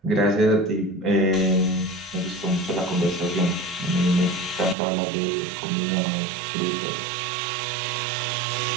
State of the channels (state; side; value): drops out; left; at 4.8 s